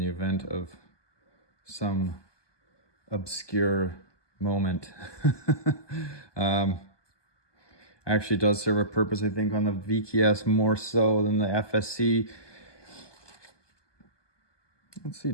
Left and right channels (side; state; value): right; late; 1.2 ms